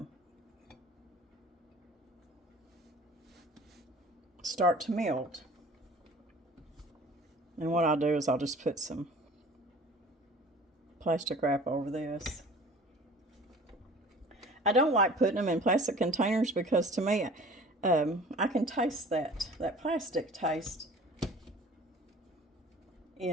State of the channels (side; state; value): both; normal; correlation 0.45